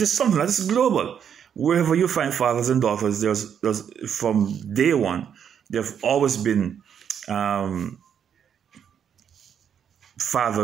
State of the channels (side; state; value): left; quieter; 8.2 dB